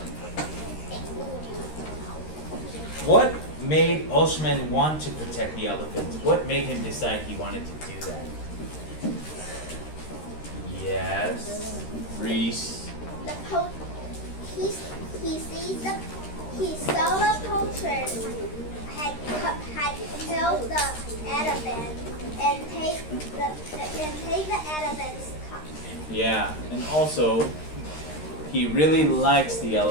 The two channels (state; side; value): late; right; 13 ms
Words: What made Osman want to protect the elephants? What made him decide he wanted to do that? Yes, Reese. He saw the poachers had killed the elephant and take the elephant's cup. Yeah, and also he really likes the